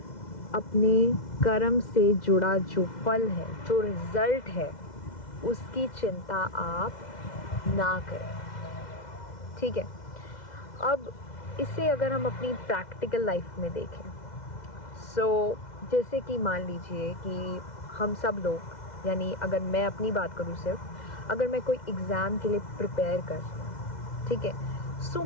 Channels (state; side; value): late; right; 2.0 ms